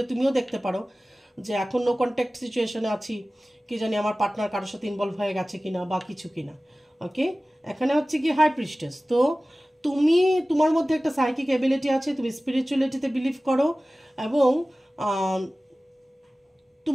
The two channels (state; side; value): normal; both; correlation 0.97